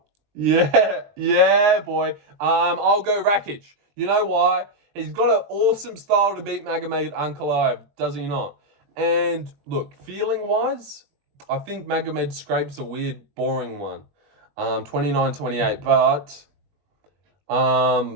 Yeah, boy. I'll go Rakic. You know why? He's got an awesome style to beat Magomed Ankalaev, does he not? And look, feeling-wise, I think Magomed scrapes a weird, boring one. 29-28, but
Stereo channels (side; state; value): left; late; 20 ms